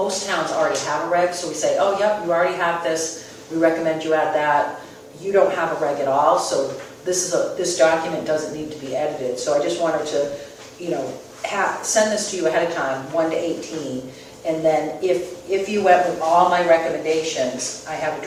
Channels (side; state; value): both; identical; correlation 1.00